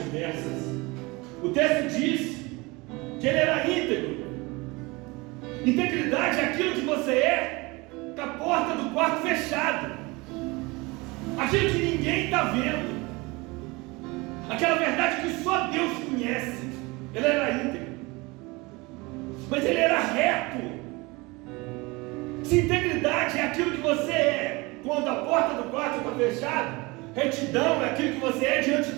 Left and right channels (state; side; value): quieter; left; 24.5 dB